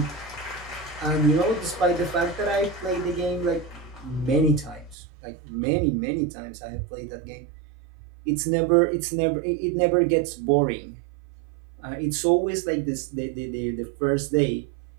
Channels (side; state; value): left; drops out; at 5.0 s